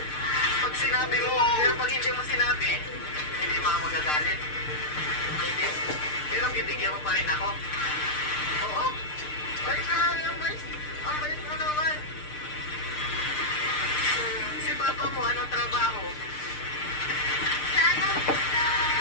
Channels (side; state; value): right; late; 6.6 ms